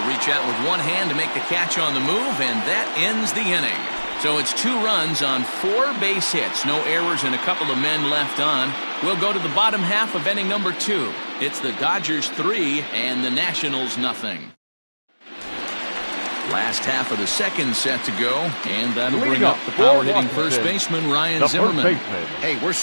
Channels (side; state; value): both; inverted; correlation -1.00